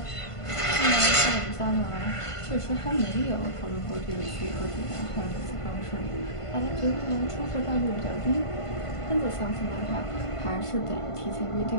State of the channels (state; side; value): late; right; 1.5 ms